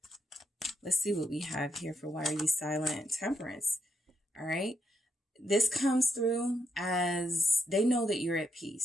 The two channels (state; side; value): normal; both; correlation 0.79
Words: Let's see what we have here for why are you silent? Temperance. All right. This comes through as they know that you're at